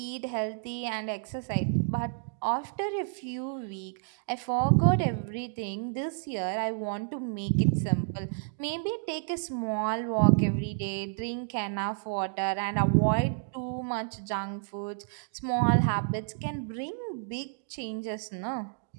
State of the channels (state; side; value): silent; left; digital silence